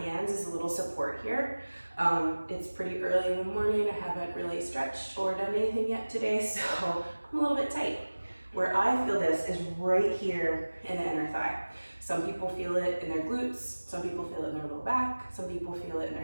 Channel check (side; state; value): both; inverted; correlation -1.00